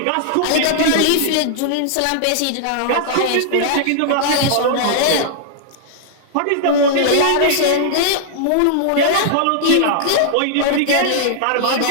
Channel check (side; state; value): both; different; correlation -0.01